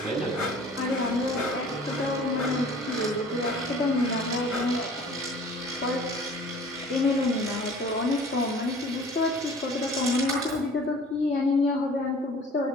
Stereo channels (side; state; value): both; normal; correlation 0.48